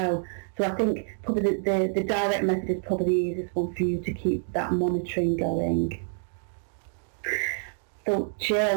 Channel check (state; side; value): silent; left; digital silence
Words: So I think probably the direct method is probably the easiest one for you to keep that monitoring going. So